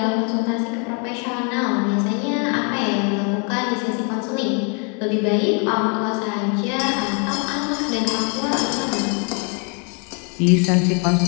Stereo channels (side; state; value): right; quieter; 36.6 dB